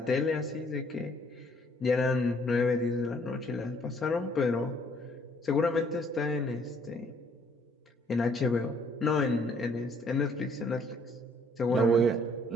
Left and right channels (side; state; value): both; normal; correlation 0.63